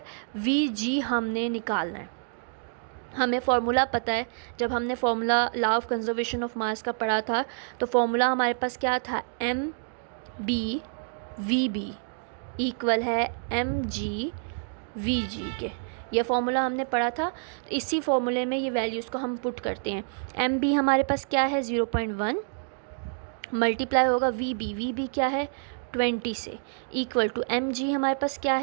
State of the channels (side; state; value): left; silent; digital silence